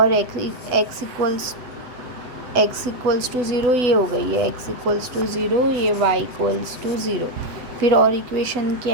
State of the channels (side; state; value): left; late; 7.9 ms